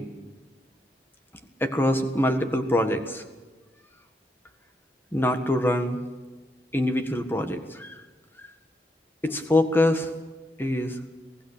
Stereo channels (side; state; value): both; normal; correlation 0.79